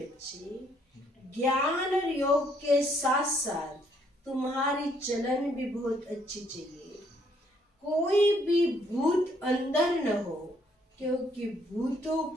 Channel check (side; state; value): both; normal; correlation 0.68